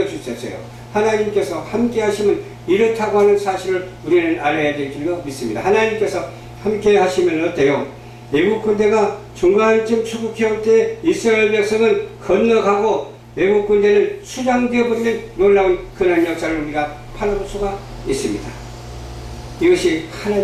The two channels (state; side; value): identical; both; correlation 1.00